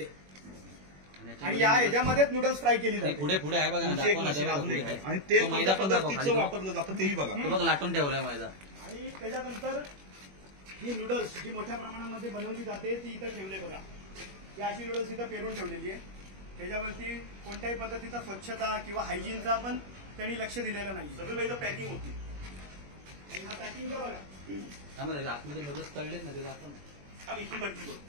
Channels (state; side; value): late; left; 21 ms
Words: आणि या ह्याच्यामध्येच नूडल्स फ्राय केली जाते. पुढे पुढे आहे बघा ना. आणि ते मैदा पदार्थाचं वापरलं जातं तेही बघा. बघ लाटून ठेवलाय मैदा. आणि त्याच्यानंतर ही नूडल्स जी मोठ्या प्रमाणामध्ये बनवली जाते ती इथं ठेवले बघा. ही अशी नूडल्स इथं पेरून ठेवलेली आहे. त्याच्यावरती कोणत्याही पद्धतीचा स्वच्छता किंवा हायजीनचा पण त्यांनी लक्ष दिलेलं नाही. सगळं मैदा पॅकिंग होती. आणि हा पॅकिंगचा बघा. आतमध्ये नूडल्स तळलेत ना ते दाखव. इथून कंटिन्यू